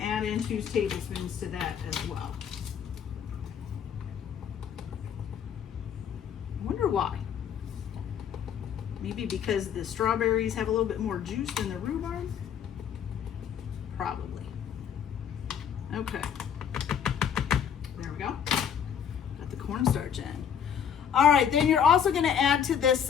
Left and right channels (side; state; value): right; quieter; 8.2 dB